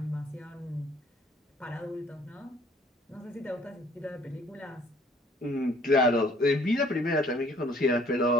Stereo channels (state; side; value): normal; both; correlation 0.59